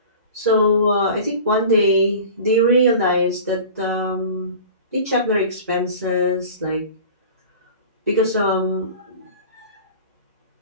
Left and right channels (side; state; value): both; inverted; correlation -0.39